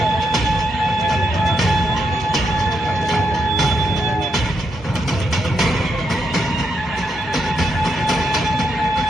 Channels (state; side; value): normal; both; correlation 0.81